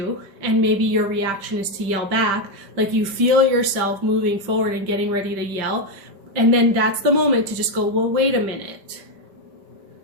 and maybe your reaction is to yell back, like you feel yourself moving forward and getting ready to yell, and then that's the moment to just go, well, wait a minute,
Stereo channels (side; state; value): left; late; 5.1 ms